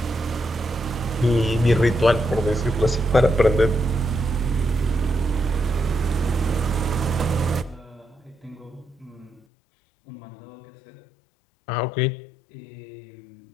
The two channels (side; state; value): right; drops out; at 9.4 s